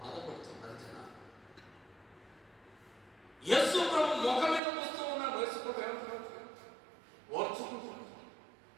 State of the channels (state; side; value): drops out; left; at 4.6 s